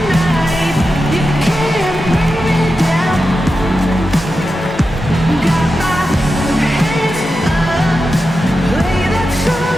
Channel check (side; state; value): both; normal; correlation 0.90